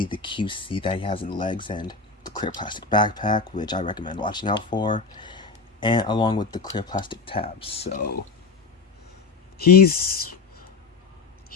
the QC that he has in the legs and the clear plastic backpack, which I recommend watching out for, and along with the clear plastic tabs. So he's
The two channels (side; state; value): right; quieter; 4.6 dB